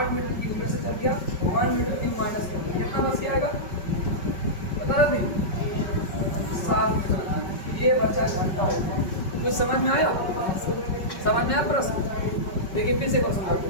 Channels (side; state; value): right; late; 5.3 ms